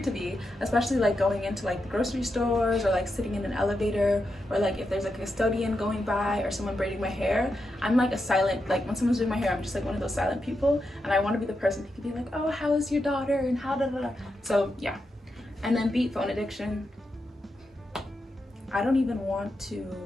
to be, especially like going into like the grocery stores or like sitting in an elevator or like if there's a custodian going by or someone braiding my hair. I'm like a silent, like when someone's doing my hair, I'm just like one of those silent people and I want to be the person who can be like, oh, how is your daughter and how da da da. So yeah. And then beat phone addiction. I don't even want to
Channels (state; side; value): normal; both; correlation 0.86